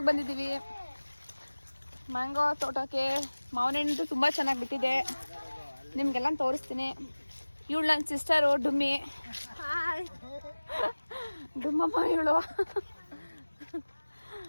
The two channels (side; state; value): both; inverted; correlation -1.00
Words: ಬಂದಿದ್ದೀವಿ. ಮ್ಯಾಂಗೋ ತೋಟಕ್ಕೆ ಮಾವಿನ ಹಣ್ಣು ತುಂಬಾ ಚೆನ್ನಾಗಿ ಬಿಟ್ಟಿದೆ. ನಿಮ್ಗೆಲ್ಲ ತೋರಿಸ್ತೀನಿ. ಇವಳು ನನ್ನ ಸಿಸ್ಟರು ಡುಮ್ಮಿ. ಡುಮ್ಮಮ್ಮ ಇವಳು.